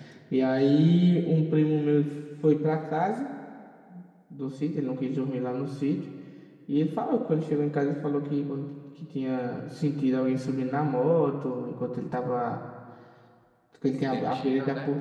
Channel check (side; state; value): both; identical; correlation 1.00